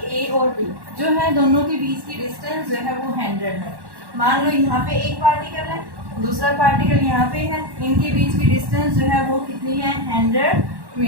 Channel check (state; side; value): late; left; 1.1 ms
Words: ए और बी, जो है दोनों के बीच की डिस्टेंस जो है वो 100 है। मान लो यहाँ पे एक पार्टिकल है, दूसरा पार्टिकल यहाँ पे है, इनके बीच की डिस्टेंस जो है वो कितनी है, 100